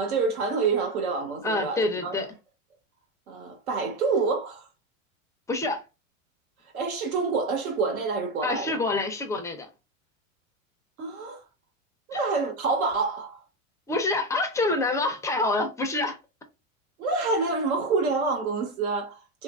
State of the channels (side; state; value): both; normal; correlation 0.13